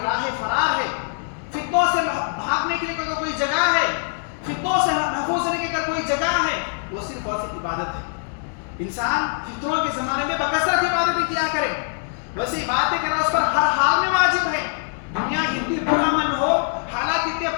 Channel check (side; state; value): right; silent; digital silence